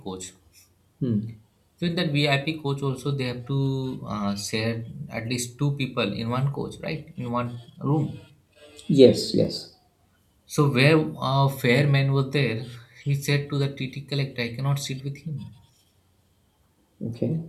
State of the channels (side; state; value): both; identical; correlation 1.00